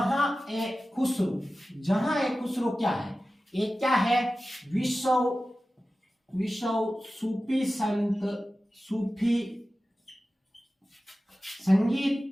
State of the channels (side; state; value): both; normal; correlation 0.95